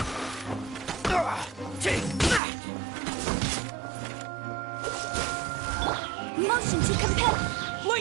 Take that. Motion to compel.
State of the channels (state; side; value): drops out; left; at 2.4 s